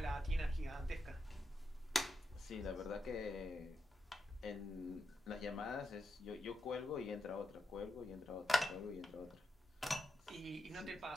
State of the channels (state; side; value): normal; both; correlation 0.86